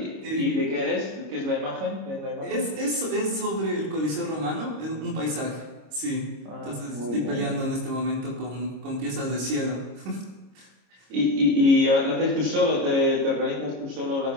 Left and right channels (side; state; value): left; late; 26 ms